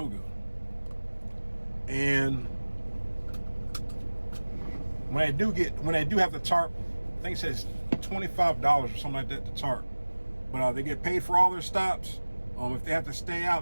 And when they do have the tarp, I think it says $25 or something like that to tarp. But they get paid for all their stops. If they have to stay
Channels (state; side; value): inverted; both; correlation -1.00